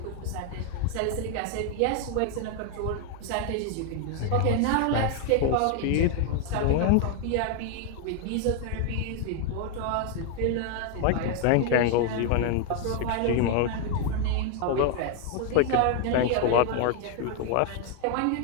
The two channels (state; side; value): different; both; correlation 0.01